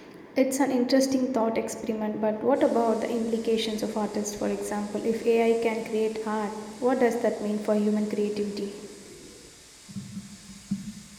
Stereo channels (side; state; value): both; identical; correlation 1.00